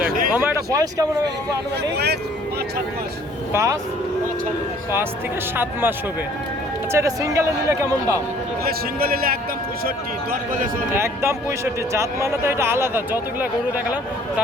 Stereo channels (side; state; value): both; normal; correlation 0.56